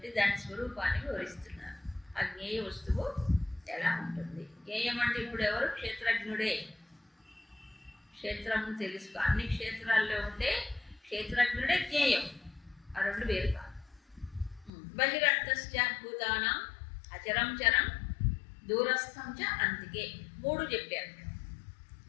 దాని స్వరూపాన్ని వివరిస్తున్నారు. ఆ జ్ఞేయ వస్తువు ఎలా ఉంటుంది? జ్ఞేయం అంటే ఇప్పుడు ఎవరు? క్షేత్రజ్ఞుడే. క్షేత్రము తెలుసుకో. అన్ని క్షేత్రాల్లో ఉండే క్షేత్రజ్ఞుడే జ్ఞేయం. ఆ రెండు వేరు కాదు. బహిరంతశ్చ భూతానాం అచరం చరం దూరస్థం చ అంతికే. మూడు చెప్పారు.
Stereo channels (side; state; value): right; drops out; at 14.7 s